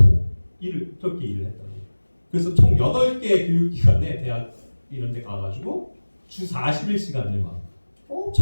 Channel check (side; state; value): both; inverted; correlation -1.00